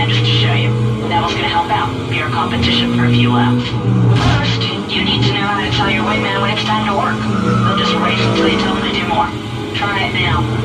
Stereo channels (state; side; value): identical; both; correlation 1.00